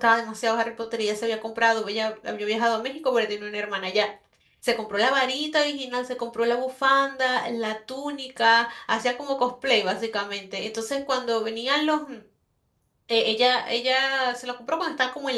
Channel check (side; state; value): both; identical; correlation 1.00